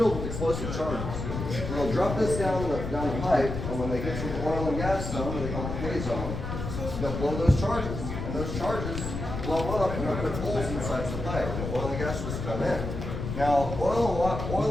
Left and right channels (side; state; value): left; noise; rumble, 5 dB below the sound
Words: with explosive charges. And they'll drop this down the pipe, and when they get to the oil and gas zone, they call it the pay zone, they'll blow those charges. And those charges blow up and they'll put holes inside the pipe, and the oil and gas just come in. Now, oil